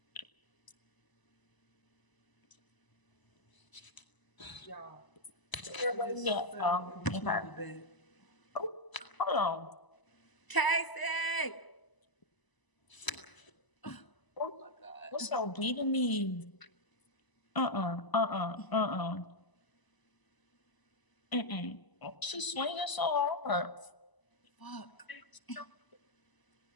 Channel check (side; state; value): right; late; 1.0 ms